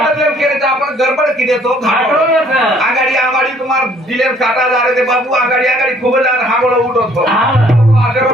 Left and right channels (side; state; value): both; normal; correlation 0.60